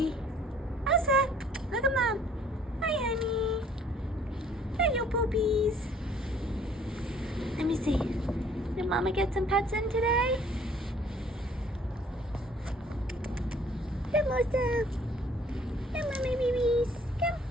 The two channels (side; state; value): both; normal; correlation 0.58